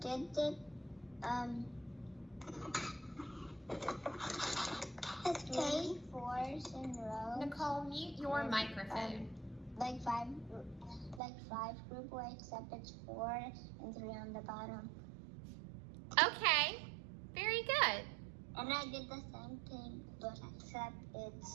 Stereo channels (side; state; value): left; drops out; at 11.2 s